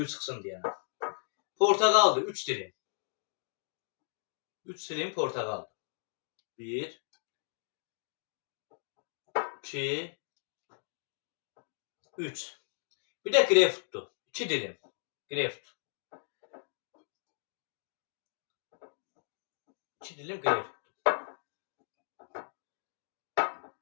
çıxsın deyənə. Portağaldır, 3 dilim. 3 dilim portağal. 1, 2, 3. Bir də greypfrutdur. 2 dilim. Greypfrut. 2 dilim greypfrut.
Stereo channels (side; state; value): right; silent; digital silence